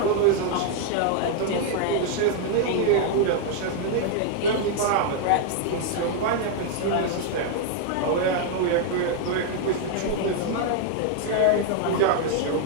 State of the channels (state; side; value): different; both; correlation 0.00